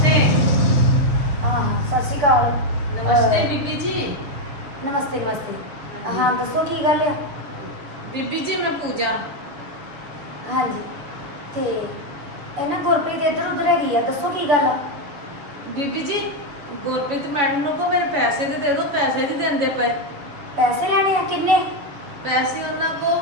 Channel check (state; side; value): late; left; 7.0 ms